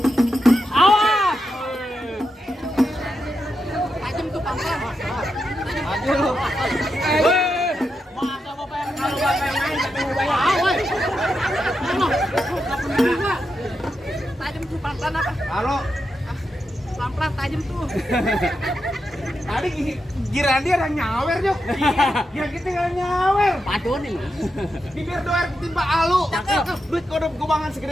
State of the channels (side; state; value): both; normal; correlation 0.86